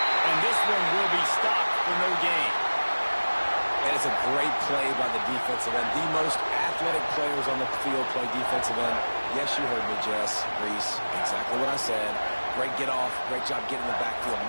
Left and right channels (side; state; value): both; inverted; correlation -1.00